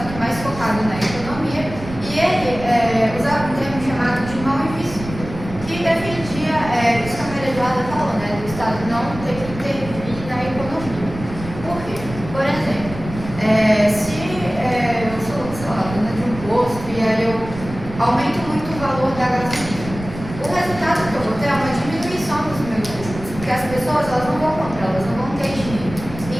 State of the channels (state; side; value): noise; right; rumble, 12 dB below the sound